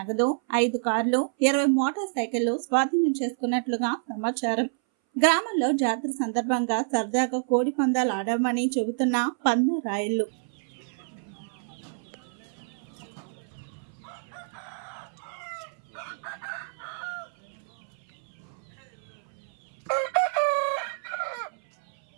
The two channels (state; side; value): silent; left; 59 dB below the other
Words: 5 కార్లు, 20 మోటార్ సైకిళ్లు స్వాధీనం చేసుకున్నట్లుగా సమాచారం. గ్రామంలో జాతర సందర్భంగా సరదాగా కోడి పందాలు ఆడామని చెబుతున్న పందెం రాయిళ్లు.